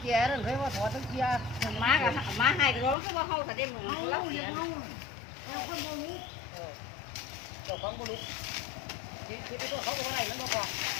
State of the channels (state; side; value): drops out; right; at 3.0 s